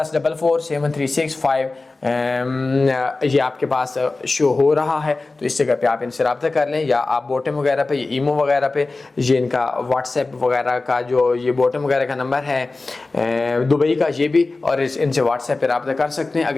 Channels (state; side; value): quieter; right; 3.4 dB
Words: ये आपके पास शो हो रहा है, तो इस जगह पे आप इनसे रब्ता कर लें, या आप बॉटम वगैरह पे, ये ईमो वगैरह पे, ये इनका व्हाट्सएप वगैरह का जो ये बॉटम वगैरह का नंबर है दुबई का, ये भी, और इनसे व्हाट्सएप पे रब्ता कर सकते हैं।